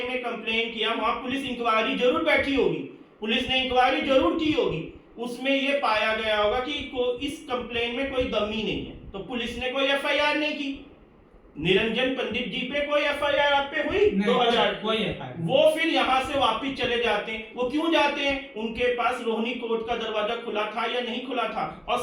कंप्लेन किया, वहां पुलिस इंक्वायरी जरूर बैठी होगी, पुलिस ने इंक्वायरी जरूर की होगी। उसमें ये पाया गया होगा कि इस कंप्लेन में कोई दमी नहीं है, तो पुलिस ने कोई FIR नहीं की। निरंजन पंडित जी पे कोई एफआईआर आप पे हुई? नहीं, 2000 कोई FIR नहीं। वो फिर यहाँ से वापिस चले जाते हैं। वो क्यों जाते हैं? उनके पास रोहिणी कोर्ट का दरवाजा खुला था या नहीं खुला था, और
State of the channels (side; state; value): both; identical; correlation 1.00